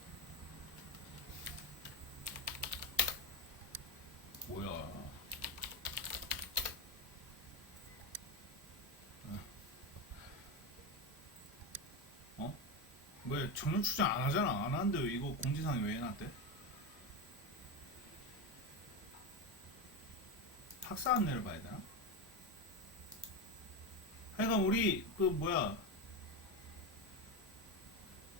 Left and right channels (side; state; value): both; normal; correlation 0.15